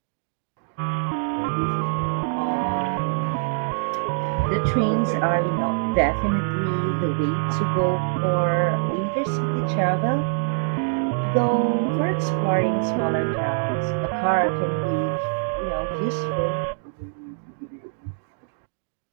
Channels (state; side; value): silent; left; digital silence